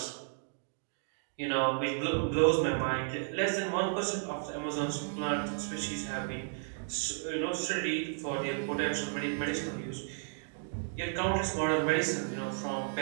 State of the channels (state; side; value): silent; left; digital silence